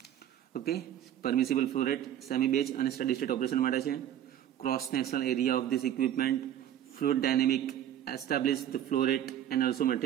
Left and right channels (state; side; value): quieter; left; 11.0 dB